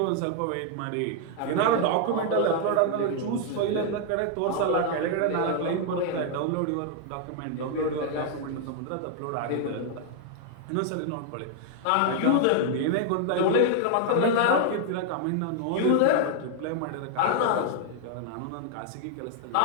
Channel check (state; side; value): different; both; correlation 0.00